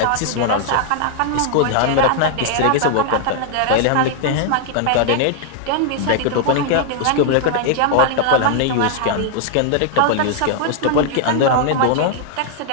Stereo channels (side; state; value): both; different; correlation 0.00